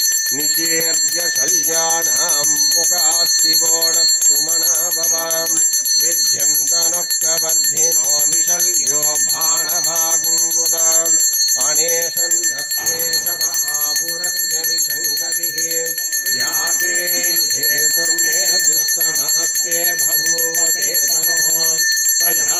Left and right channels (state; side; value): identical; both; correlation 1.00